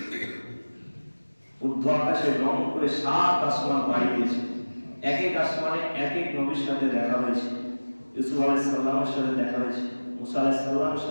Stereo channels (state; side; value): inverted; both; correlation -1.00